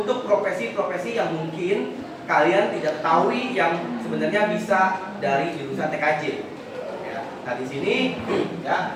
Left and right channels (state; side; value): identical; both; correlation 1.00